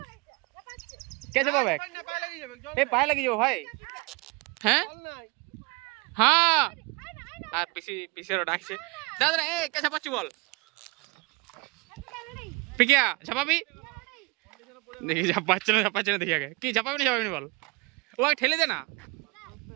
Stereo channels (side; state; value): left; quieter; 26.8 dB